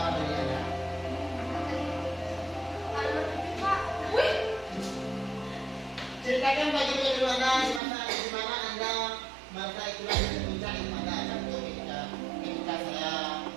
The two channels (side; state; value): left; drops out; at 7.8 s